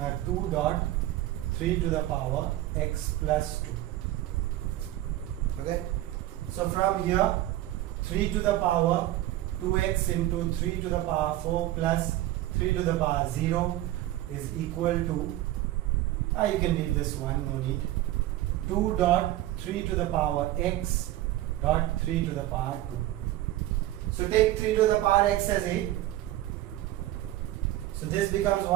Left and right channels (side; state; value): left; quieter; 15.0 dB